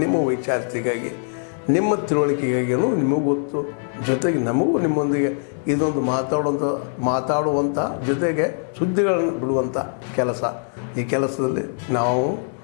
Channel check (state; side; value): silent; right; 61 dB below the other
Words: ನಿಮ್ಮ ವೈಚಾರಿಕೆಗಾಗಿ, ನಿಮ್ಮ ತಿಳುವಳಿಕೆಗಾಗಿ ನಿಮಗೂ ಗೊತ್ತು. ಜೊತೆಗೆ ನಮಗೂ ನಿಮ್ಮೊಂದಿಗೆ ಇದೊಂದು ಮಾತಾಡುವಂಥ ಜೊತೆಗೆ ಸುದ್ದಿಗಳನ್ನು ಬಿಡುವಂಥ ಕೆಲಸ. ಈ ಕೆಲಸದಲ್ಲಿ ನಾವು